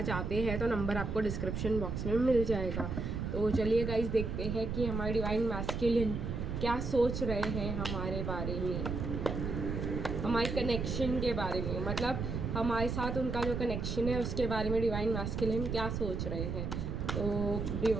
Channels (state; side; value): noise; right; rumble, 3 dB below the sound